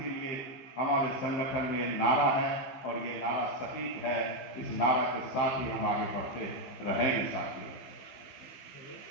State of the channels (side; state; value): right; late; 15 ms